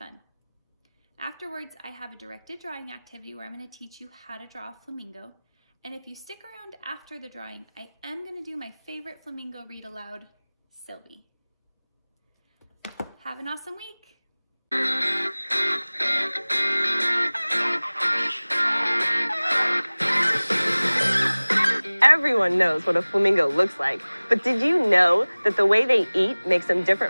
Afterwards, I have a directed drawing activity where I'm going to teach you how to draw a flamingo. And if you stick around after the drawing, I am going to do my favorite flamingo read aloud, Sylvie. Have an awesome week! Everyone knows what a flamingo looks like, but did you know that the way they eat makes them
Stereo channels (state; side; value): inverted; both; correlation -1.00